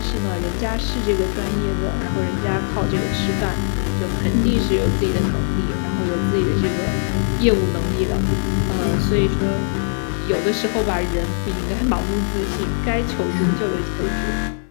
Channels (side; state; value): right; silent; 55 dB below the other